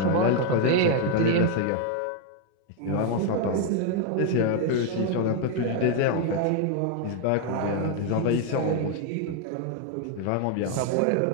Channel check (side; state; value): both; different; correlation 0.01